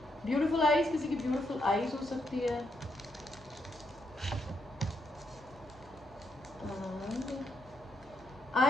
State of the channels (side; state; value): both; normal; correlation 0.78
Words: ब्यूटीफुल आईज, किसी की ब्यूटीफुल आईज हो सकती है।